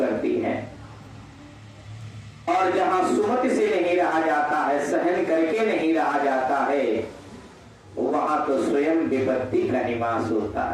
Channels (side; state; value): both; identical; correlation 1.00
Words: है। और जहां सुमति से नहीं रहा जाता है, सहन करके नहीं रहा जाता है, वहां तो स्वयं विपत्ति का निवास होता